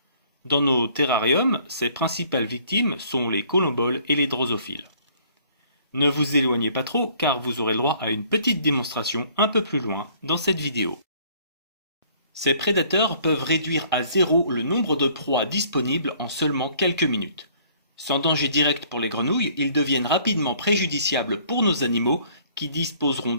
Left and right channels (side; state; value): both; inverted; correlation -0.59